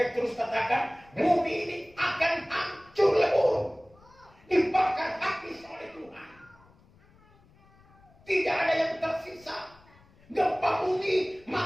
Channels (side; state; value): left; noise; rumble, 28 dB below the sound